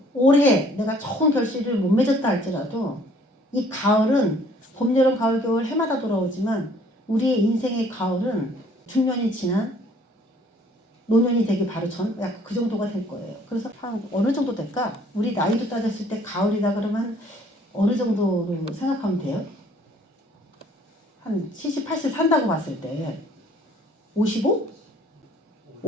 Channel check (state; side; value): normal; both; correlation 0.58